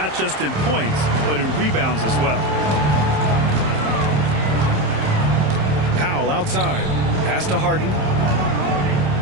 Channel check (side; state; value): left; late; 27 ms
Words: just in points, but in rebounds as well. Powell outside. Pass to Harden.